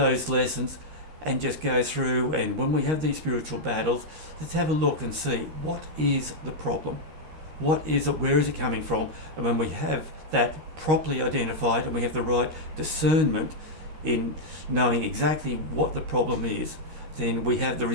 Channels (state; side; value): late; left; 13 ms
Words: lessons and just go through, and when we have these spiritual battles, let's have a look and see what is the problem. What is it? Where is it coming from? And when we have that properly identified and we have the right discernment in knowing exactly what the problem is, then we have the